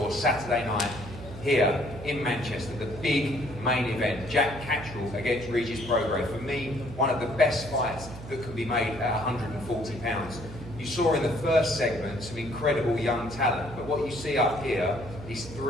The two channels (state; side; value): noise; right; hum, 13 dB below the sound